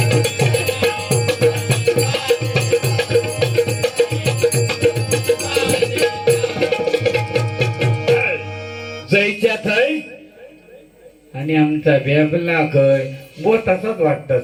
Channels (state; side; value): identical; both; correlation 1.00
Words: जयच्या थय आणि आमचा बेबला कय बो तसाच वाटतात